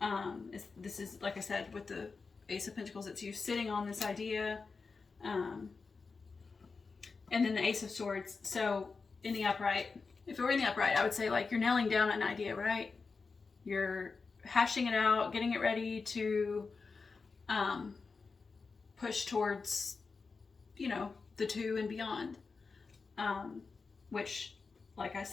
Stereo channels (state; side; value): quieter; right; 4.6 dB